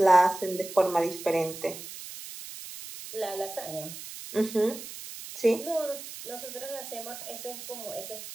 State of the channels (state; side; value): noise; right; hiss, 12 dB below the sound